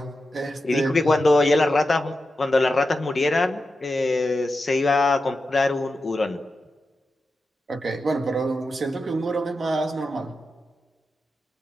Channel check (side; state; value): both; normal; correlation 0.90